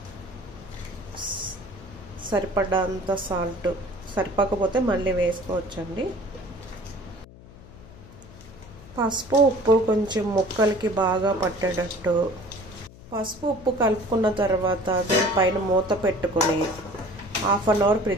సరిపడంత సాల్ట్, సరిపోకపోతే మళ్ళీ వేసుకోవచ్చండి. పసుపు ఉప్పు కొంచెం ముక్కలకి బాగా పట్టేటట్టు పసుపు ఉప్పు కలుపుకున్న తర్వాత దీనిపైన మూత పెట్టుకుని హాఫ్ అన్ అవర్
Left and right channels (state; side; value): noise; left; hum, 20 dB below the sound